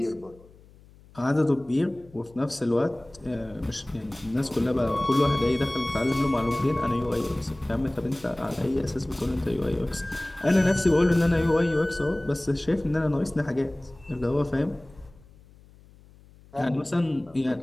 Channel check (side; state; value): left; noise; hum, 25 dB below the sound